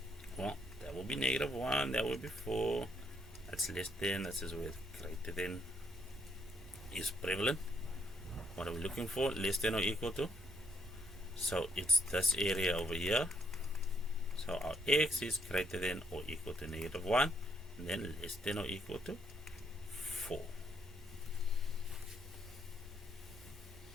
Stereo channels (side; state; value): both; normal; correlation 0.72